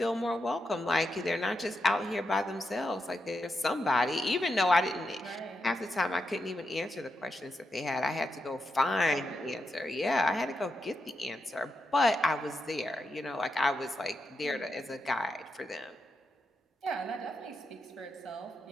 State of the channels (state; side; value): normal; both; correlation 0.85